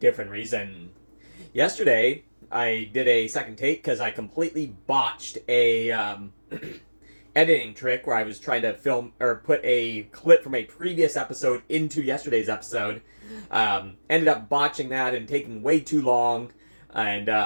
reason. Yesterday I did a second take because I completely botched a editing trick where I was trying to film or put a clip from a previous episode into yesterday's episode. Ended up botching that and taking way too long,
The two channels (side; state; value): both; inverted; correlation -1.00